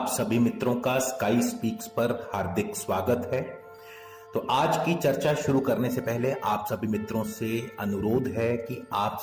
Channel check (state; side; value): identical; both; correlation 1.00